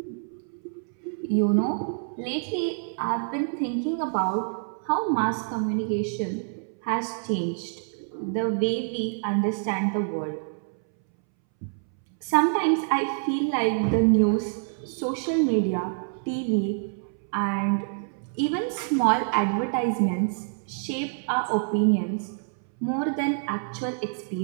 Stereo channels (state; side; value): silent; left; 60 dB below the other